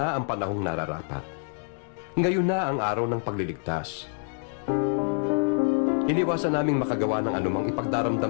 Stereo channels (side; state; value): right; silent; 60 dB below the other